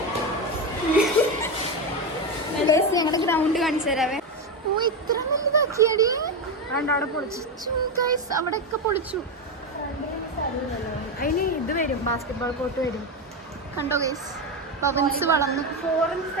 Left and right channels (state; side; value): normal; both; correlation 0.12